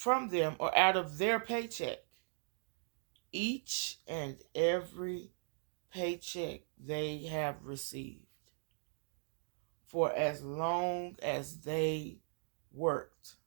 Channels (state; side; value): silent; left; digital silence